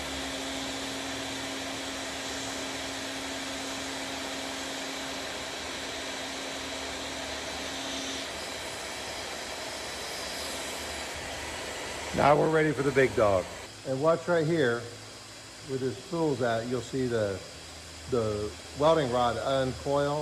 Now we're ready for the big dog. And watch right here, where this spool's at, you'll see the welding rod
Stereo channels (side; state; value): both; identical; correlation 1.00